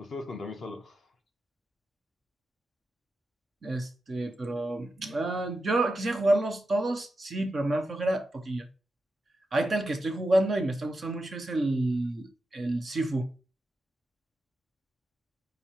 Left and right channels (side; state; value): both; normal; correlation 0.89